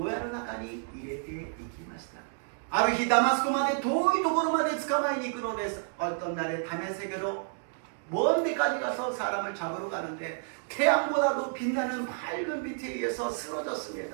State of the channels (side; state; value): left; silent; digital silence